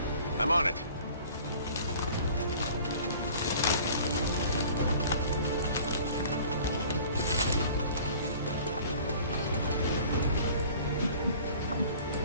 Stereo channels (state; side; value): inverted; both; correlation -0.47